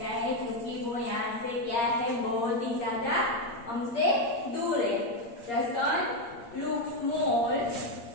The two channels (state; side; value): late; right; 8.6 ms